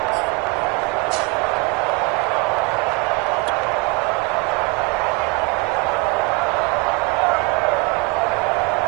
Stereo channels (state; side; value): quieter; left; 28.1 dB